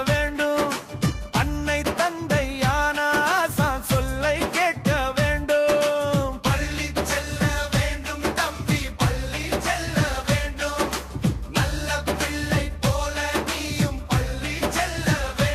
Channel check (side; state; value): both; identical; correlation 1.00